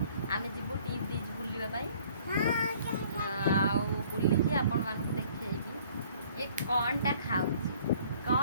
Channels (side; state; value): both; inverted; correlation -0.56